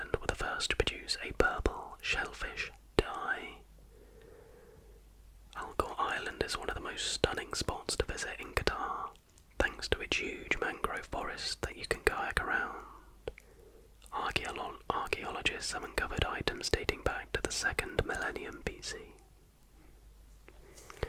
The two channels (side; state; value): both; identical; correlation 1.00